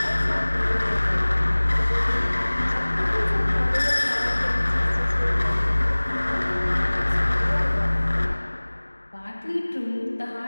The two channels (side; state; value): both; inverted; correlation -1.00